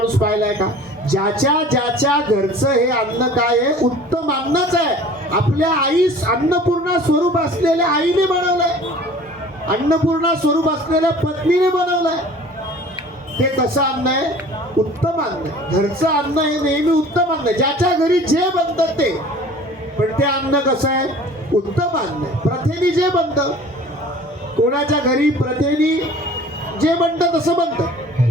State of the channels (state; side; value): normal; both; correlation 0.46